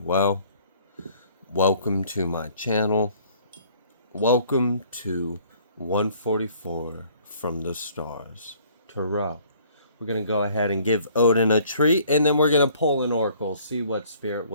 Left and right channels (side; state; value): both; inverted; correlation -0.58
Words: well. Welcome to my channel. Welcome to 144 from the stars. Tarot. We're going to go ahead and give Odin a treat, and then we're going to pull an oracle, see what spirit